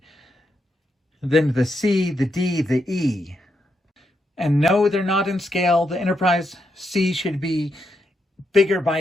Then the C, the D, the E. And no, they're not in scale. The Enterprise C should be bigger by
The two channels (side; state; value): both; normal; correlation 0.82